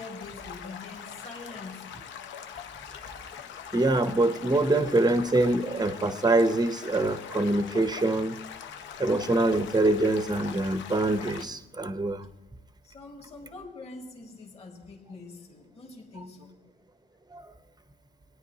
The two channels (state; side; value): normal; both; correlation 0.71